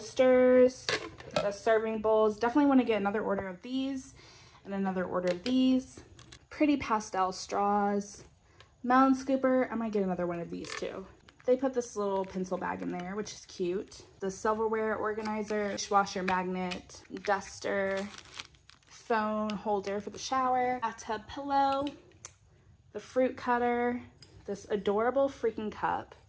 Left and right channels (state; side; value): identical; both; correlation 1.00